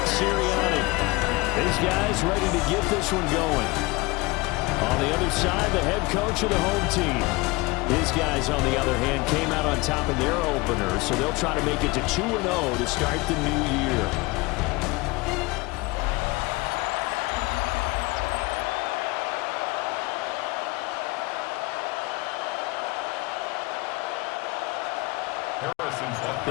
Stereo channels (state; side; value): quieter; right; 23.2 dB